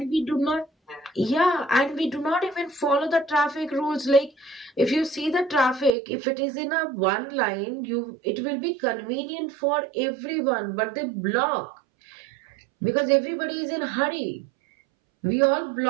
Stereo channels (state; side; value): drops out; left; at 6.0 s